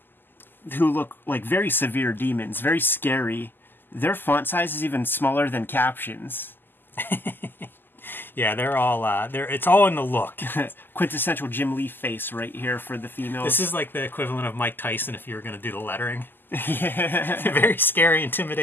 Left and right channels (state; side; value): late; right; 0.093 ms